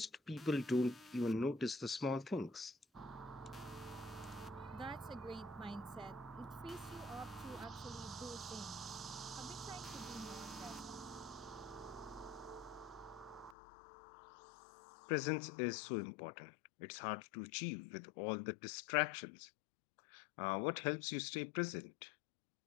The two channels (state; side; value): drops out; right; at 13.6 s